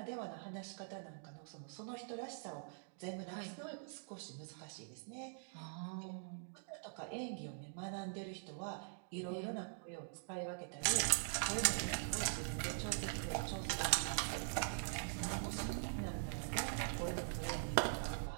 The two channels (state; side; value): silent; left; digital silence